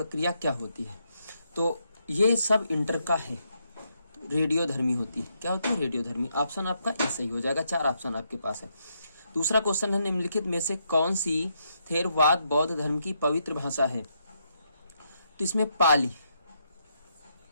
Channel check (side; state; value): both; inverted; correlation -0.78